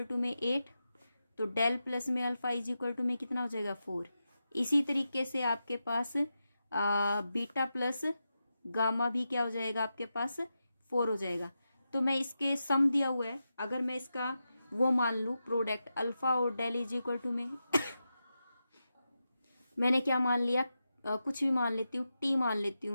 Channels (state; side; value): inverted; both; correlation -0.89